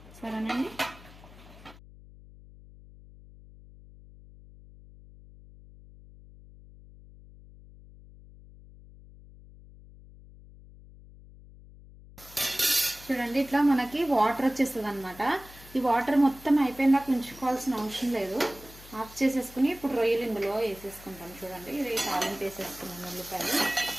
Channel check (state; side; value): noise; left; hum, 20 dB below the sound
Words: సరేనండి. చూడండి ఇట్లా మనకి వాటర్ వచ్చేస్తుంది అనమాట. ఈ వాటర్ మొత్తం అయిపోయిందాక ఉంచుకోవాల్సిన అవసరం లేదు. ఆఫ్ చేసేసుకుని ఇప్పుడు రొయ్యలు ఇందులో వేసేసుకుంటాం. చూడండి ఇది తాలింపు వేసేసుకున్నాను. ఉల్లిపాయలు